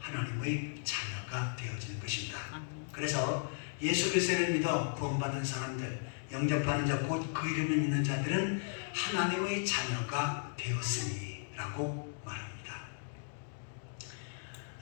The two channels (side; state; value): right; silent; digital silence